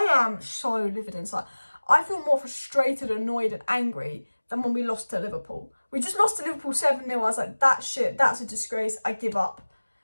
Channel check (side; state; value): both; inverted; correlation -1.00